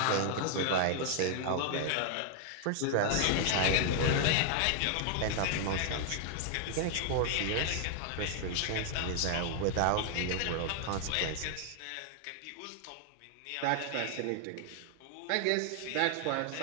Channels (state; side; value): different; both; correlation 0.00